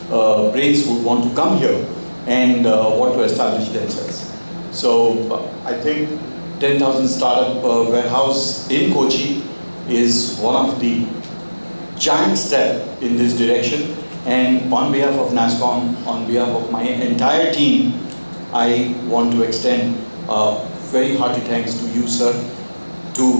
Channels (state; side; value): inverted; both; correlation -1.00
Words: brains would want to come here and want to establish themselves. So I think 10,000 startup warehouse in Cochin is one of the giant step in this direction. And on behalf of Nasscom, on behalf of my entire team, I want to extend very hearty thanks to you, sir, to